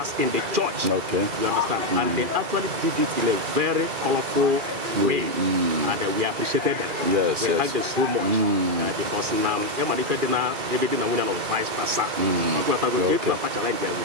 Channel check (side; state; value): left; late; 2.4 ms